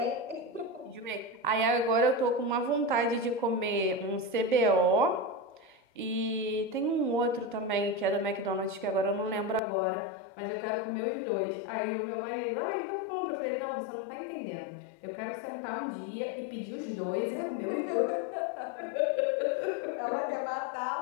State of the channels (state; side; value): drops out; right; at 9.6 s